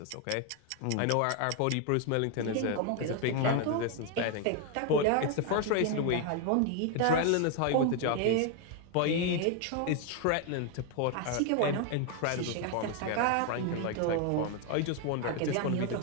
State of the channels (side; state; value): both; different; correlation 0.01